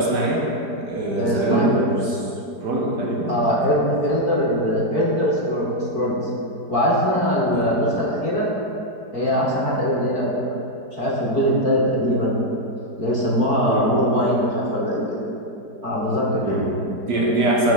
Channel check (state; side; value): late; left; 5.0 ms